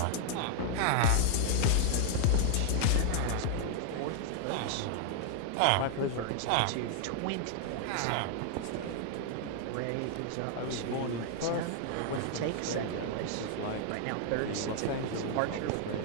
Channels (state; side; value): different; both; correlation -0.01